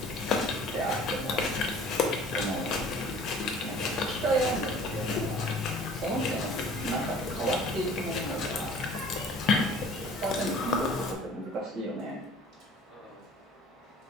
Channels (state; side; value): normal; both; correlation 0.49